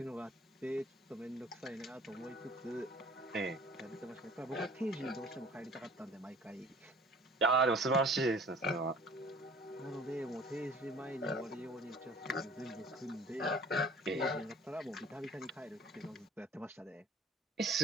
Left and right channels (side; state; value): both; normal; correlation 0.50